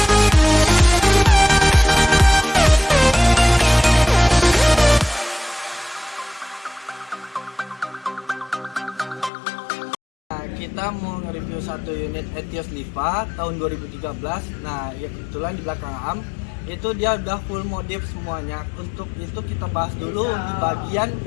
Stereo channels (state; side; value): drops out; right; at 9.3 s